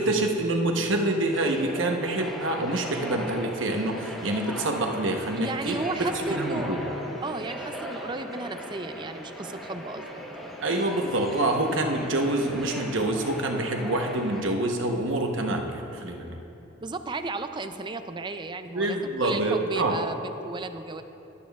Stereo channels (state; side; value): normal; both; correlation 0.26